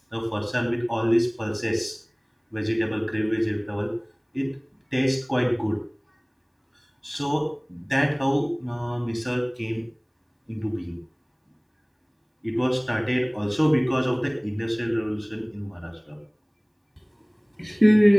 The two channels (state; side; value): identical; both; correlation 1.00